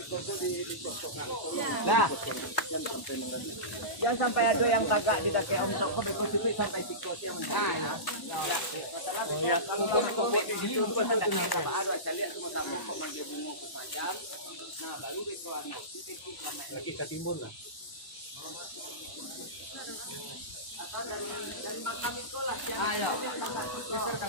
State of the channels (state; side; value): late; right; 1.0 ms